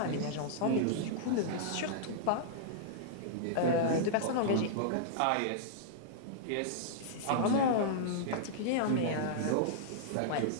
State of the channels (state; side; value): different; both; correlation -0.02